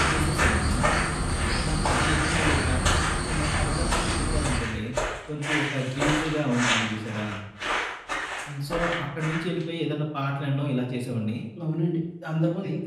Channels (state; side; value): identical; both; correlation 1.00